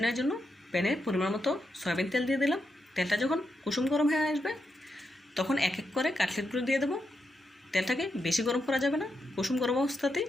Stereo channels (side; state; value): both; normal; correlation 0.84